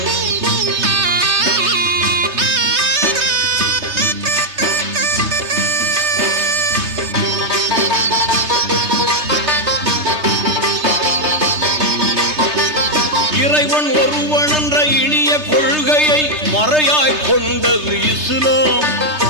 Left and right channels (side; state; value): left; late; 3.3 ms